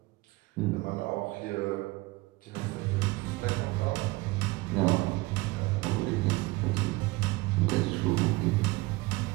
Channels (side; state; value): left; quieter; 22.0 dB